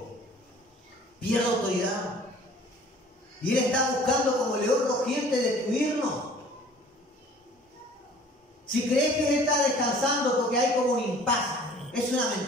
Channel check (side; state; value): both; normal; correlation 0.50